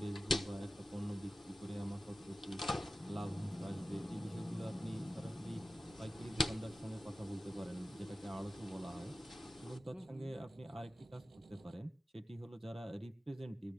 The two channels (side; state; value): both; normal; correlation 0.95